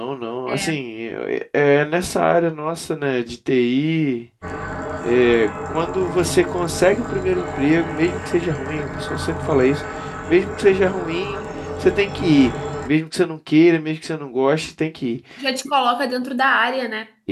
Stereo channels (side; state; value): both; identical; correlation 1.00